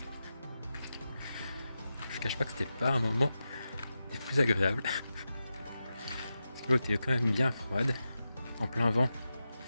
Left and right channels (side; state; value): both; inverted; correlation -0.91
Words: Je cache pas que c'était pas un moment des plus agréables parce que l'eau était quand même bien froide, en plein vent